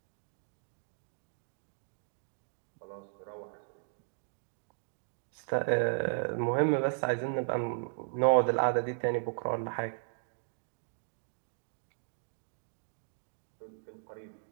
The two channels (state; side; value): silent; left; digital silence